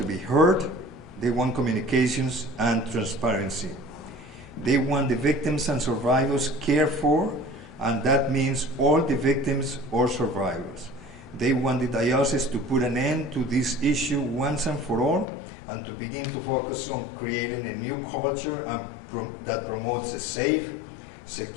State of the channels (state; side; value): drops out; right; at 15.2 s